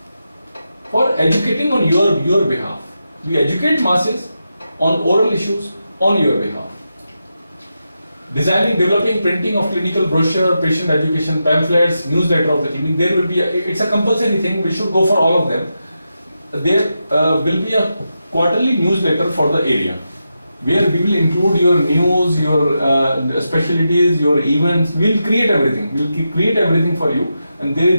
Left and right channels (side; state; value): both; inverted; correlation -0.88